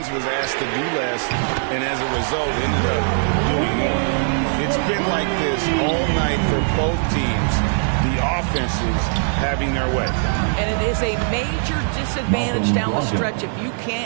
was asked to do less, and as a result, ended up doing more. It's been like this all night for both teams. The offenses having their way. And it is a major disadvantage down the stretch if you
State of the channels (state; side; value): silent; left; digital silence